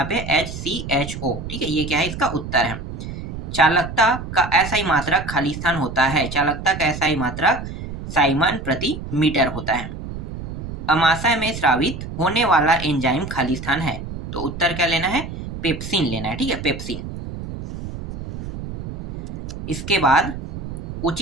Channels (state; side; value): noise; right; rumble, 8 dB below the sound